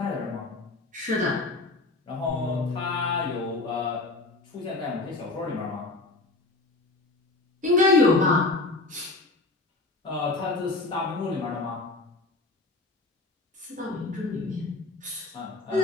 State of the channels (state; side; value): quieter; right; 3.3 dB